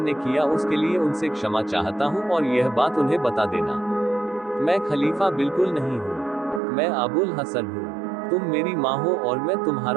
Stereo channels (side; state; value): left; drops out; at 6.6 s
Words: किया उसके लिए उनसे क्षमा चाहता हूँ और यह बात उन्हें बता देना। मैं खलीफा बिल्कुल नहीं हूँ, मैं अबुल हसन हूँ। तुम मेरी माँ हो और मैं